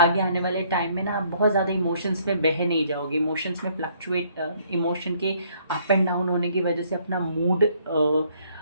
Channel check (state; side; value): inverted; both; correlation -0.65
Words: आने वाले टाइम में ना आप बहुत ज़्यादा इमोशंस में बह नहीं जाओगे। इमोशंस में फ्लक्चुएट, इमोशन के अप एंड डाउन होने की वजह से अपना मूड